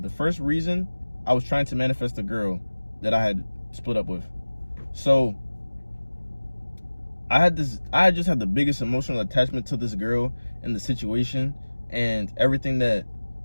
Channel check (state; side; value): inverted; both; correlation -1.00